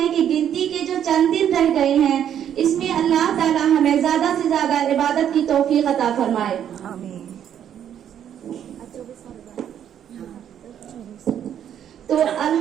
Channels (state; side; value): quieter; left; 9.6 dB